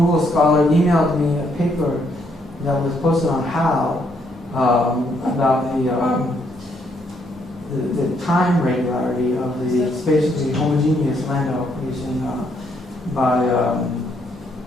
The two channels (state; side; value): normal; both; correlation 0.73